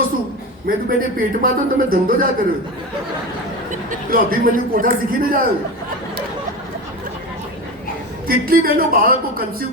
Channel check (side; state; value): both; normal; correlation 0.25